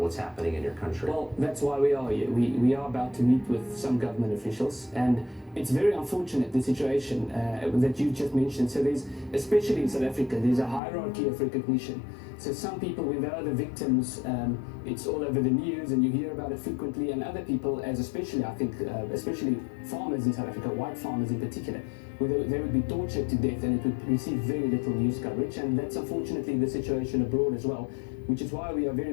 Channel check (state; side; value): drops out; right; at 10.8 s